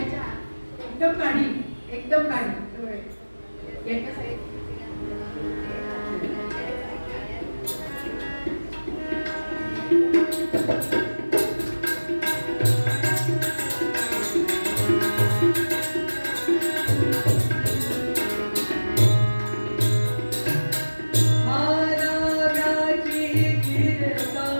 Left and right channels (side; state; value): both; inverted; correlation -1.00